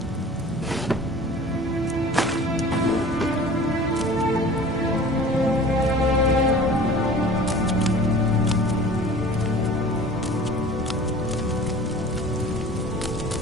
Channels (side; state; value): both; normal; correlation 0.43